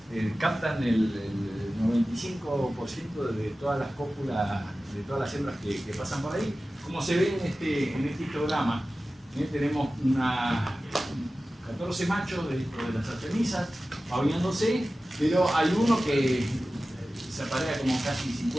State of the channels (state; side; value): normal; both; correlation 0.95